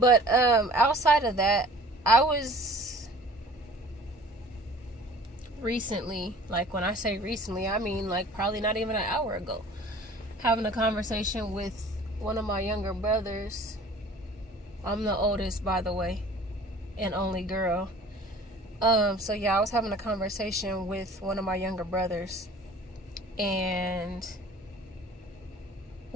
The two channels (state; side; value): normal; both; correlation 0.48